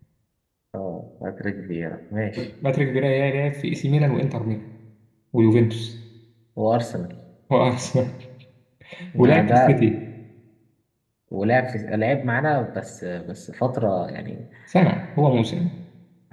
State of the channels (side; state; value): both; identical; correlation 1.00